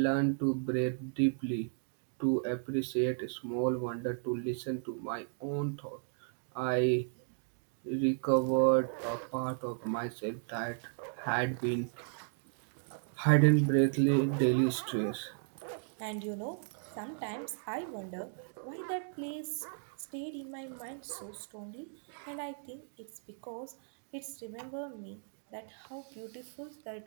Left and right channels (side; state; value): left; silent; digital silence